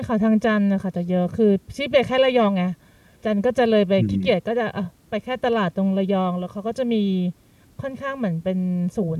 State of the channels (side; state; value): both; identical; correlation 1.00